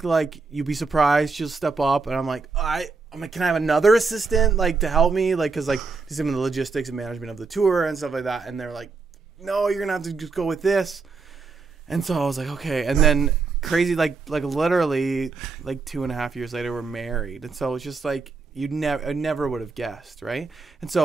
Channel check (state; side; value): quieter; left; 4.4 dB